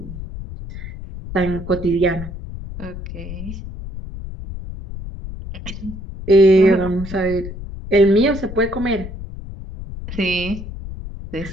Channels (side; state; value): left; noise; rumble, 10 dB below the sound